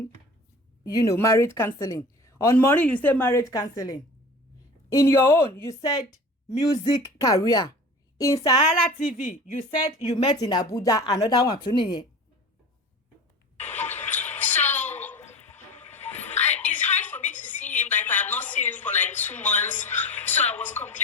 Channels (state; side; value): normal; both; correlation 0.37